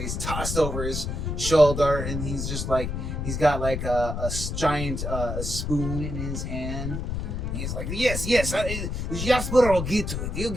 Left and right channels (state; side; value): noise; left; rumble, 3 dB below the sound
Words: he's tossed over his shoulder, and he's just like he's got like a giant spoon in his hand. And he's like, yes, Jasper will get to it. He'll